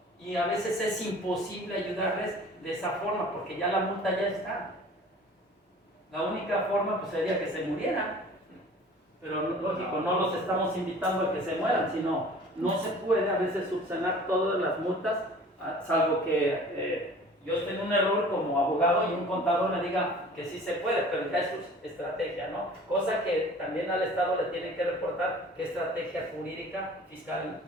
Y a veces es imposible ayudarles de esa forma, porque ya la multa ya está. La única forma pues sería que se murieran. Pero lógico, no los estamos invitando a que se mueran, sino no se puede a veces subsanar todas las multas, salvo que yo esté en un error como abogado y un contador me diga que sí se puede, pero ya es su estrategia, ¿no? Cosa que también al Estado le tienen que reportar qué estrategia jurídica fiscal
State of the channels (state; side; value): normal; both; correlation 0.46